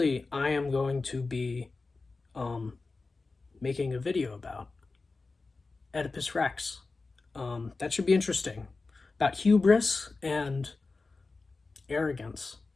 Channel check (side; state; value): right; quieter; 3.8 dB